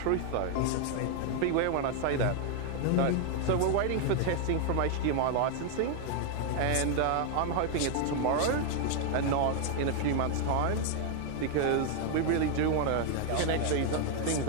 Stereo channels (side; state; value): both; different; correlation 0.00